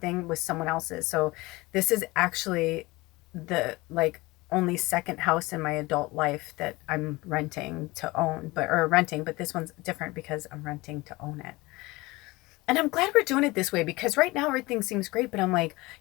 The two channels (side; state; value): right; quieter; 21.7 dB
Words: with someone else's. So this is actually the like only second house in my adult life that I'm renting to own, but this one's different because I'm renting to own it. And I'm glad we're doing it this way, because right now everything seems great, but I'm like,